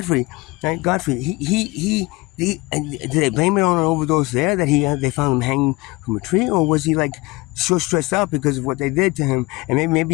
right? Godfrey, he did they blame it on an overdose there that they found him hanging from a tree, or was he like so stressed out because of what they did to him, and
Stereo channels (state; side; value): quieter; right; 23.0 dB